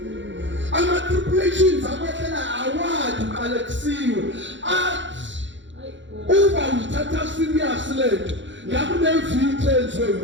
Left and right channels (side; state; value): left; late; 0.54 ms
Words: Ama-tribulations akwehlela awadi uqalekisiwe athi uba uthatha serious lento ngakunevithe enziwe